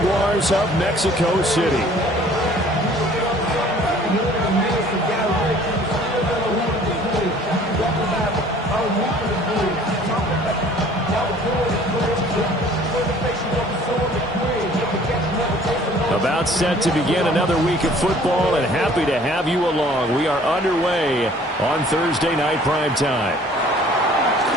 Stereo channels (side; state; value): both; normal; correlation 0.53